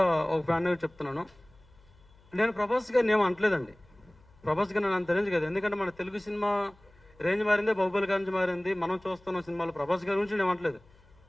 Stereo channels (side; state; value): left; noise; hum, 29 dB below the sound